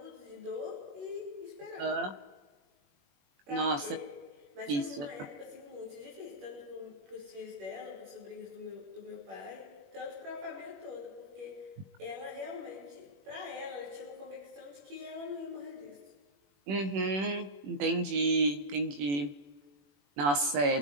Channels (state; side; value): late; left; 21 ms